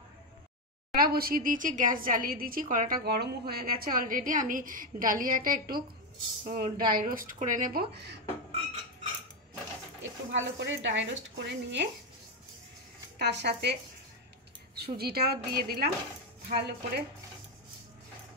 কড়া বসিয়ে দিয়েছি, গ্যাস জ্বালিয়ে দিয়েছি, কড়াটা গরমও হয়ে গেছে অলরেডি। আমি ডালিয়াটা একটু ড্রাই রোস্ট করে নেব। একটু ভালো করে ড্রাই রোস্ট করে নিয়ে তার সাথে সুজিটাও দিয়ে দিলাম। ভালো করে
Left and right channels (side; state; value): both; normal; correlation 0.07